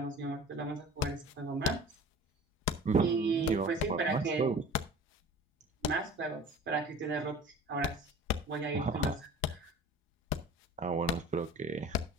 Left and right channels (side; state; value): both; normal; correlation 0.41